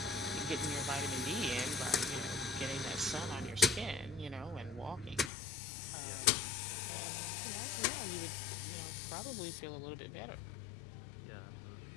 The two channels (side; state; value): right; drops out; at 5.3 s